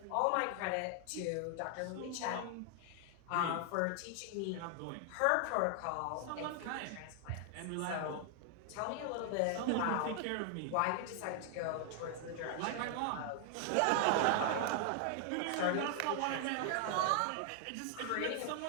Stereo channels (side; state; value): both; different; correlation 0.00